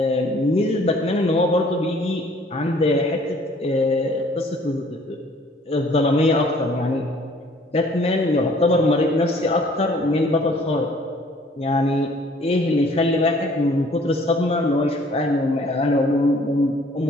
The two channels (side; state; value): both; normal; correlation 0.57